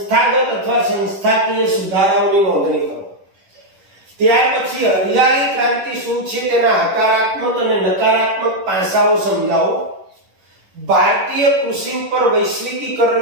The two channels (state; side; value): late; left; 10 ms